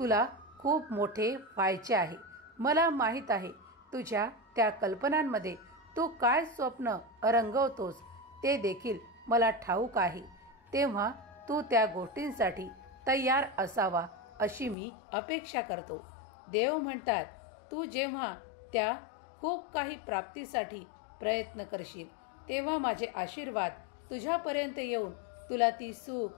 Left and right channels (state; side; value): drops out; right; at 14.8 s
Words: खूप मोठे व्हायचे आहे. मला माहीत आहे तुझ्या त्या कल्पनांमध्ये तू काय स्वप्न रंगवतोस ते देखील मला ठाऊक आहे. तेव्हा तू त्या गोष्टींसाठी तयार असावा अशी मी अपेक्षा करतो. देव म्हणतात, तू जेव्हा त्या खूप काही प्राप्तीसाठी प्रयत्न करशील, तेव्हा माझे आशीर्वाद तुझ्यापर्यंत येऊन तुला ती सुख,